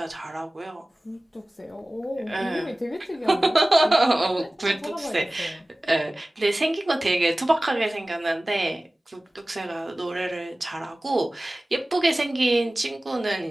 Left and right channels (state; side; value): normal; both; correlation 0.97